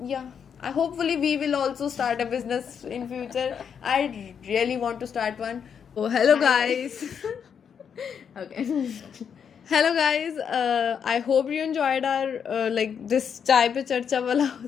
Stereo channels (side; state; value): right; quieter; 7.4 dB